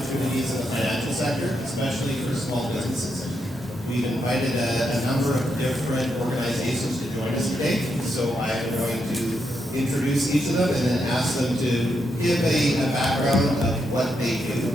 in the financial sector, especially for small businesses. We've invited a number of different organizations to join us today, so I'm going to introduce each of them and then ask them to give a background of what they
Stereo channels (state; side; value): normal; both; correlation 0.81